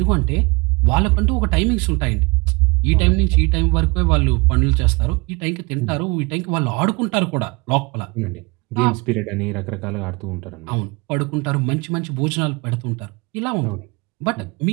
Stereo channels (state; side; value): quieter; left; 27.1 dB